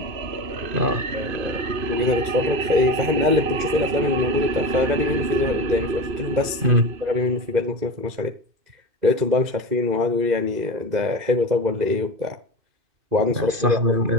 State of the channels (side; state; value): left; late; 2.1 ms